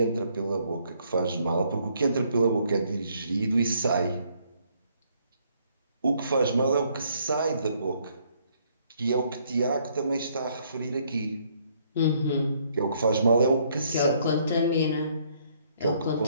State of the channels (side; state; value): both; inverted; correlation -0.67